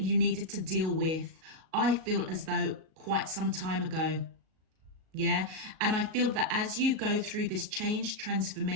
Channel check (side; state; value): left; late; 38 ms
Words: needed to deal with, I feel as though quite some time ago. Yeah. And I feel that as you go through this change,